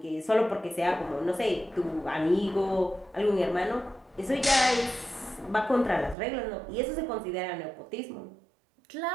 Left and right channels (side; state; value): left; drops out; at 6.2 s